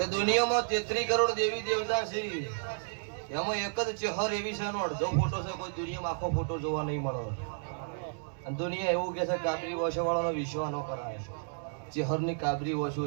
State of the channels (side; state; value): left; silent; digital silence